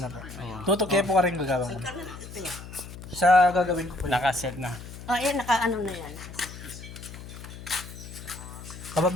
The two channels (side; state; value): left; noise; hum, 13 dB below the sound